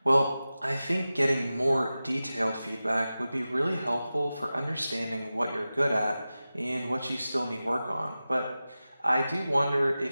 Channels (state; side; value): inverted; both; correlation -0.95